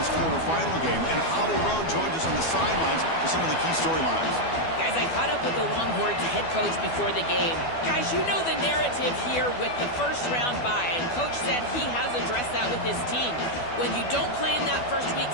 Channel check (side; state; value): right; late; 12 ms